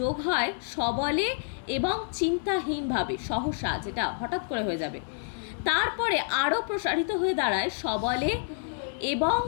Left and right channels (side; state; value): right; silent; digital silence